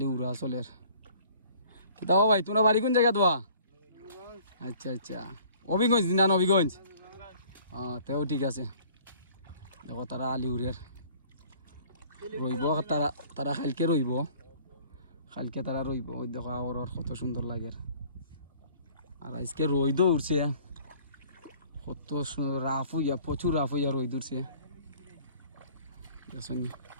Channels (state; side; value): inverted; both; correlation -0.53